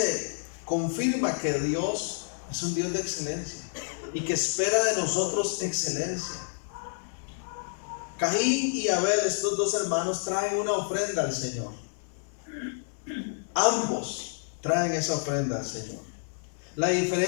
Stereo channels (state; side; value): silent; right; 59 dB below the other